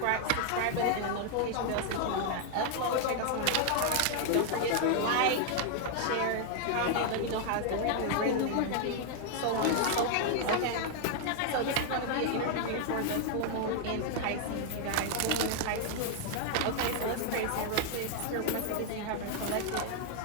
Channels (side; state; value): both; different; correlation 0.00